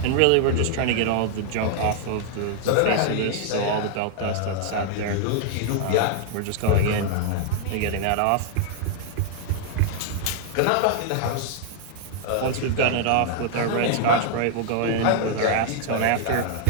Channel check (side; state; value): both; different; correlation 0.00